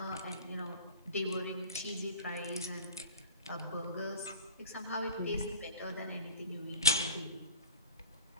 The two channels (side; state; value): both; inverted; correlation -0.36